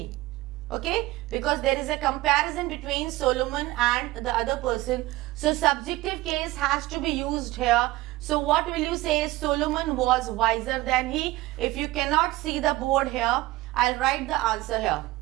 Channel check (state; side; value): quieter; left; 18.8 dB